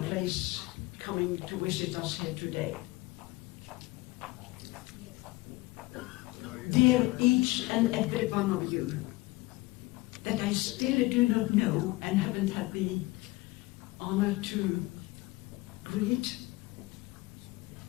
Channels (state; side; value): quieter; right; 20.9 dB